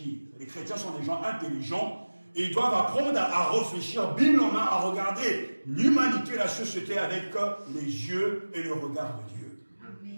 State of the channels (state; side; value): inverted; both; correlation -1.00